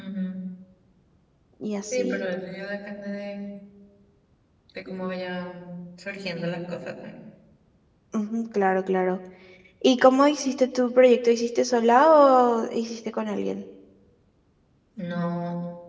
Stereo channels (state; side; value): identical; both; correlation 1.00